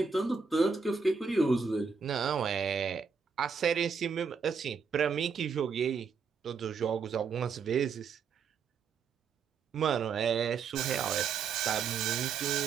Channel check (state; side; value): quieter; left; 5.6 dB